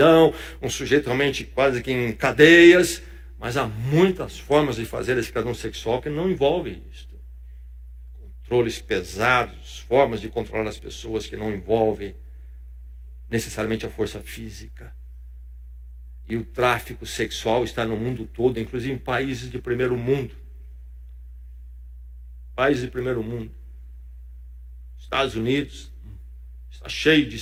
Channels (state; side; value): identical; both; correlation 1.00